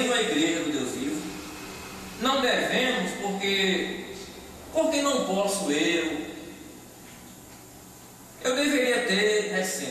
a igreja do Deus vivo, não devemos, porque não posso eu deveria ter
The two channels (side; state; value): both; identical; correlation 1.00